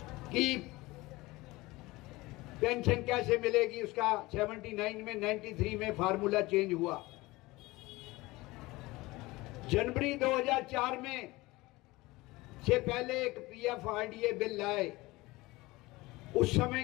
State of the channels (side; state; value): right; quieter; 20.8 dB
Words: कि पेंशन कैसे मिलेगी, उसका 79 में 93 में फार्मूला चेंज हुआ। जनवरी 2004 में से पहले एक PFRDA बिल लाए। उस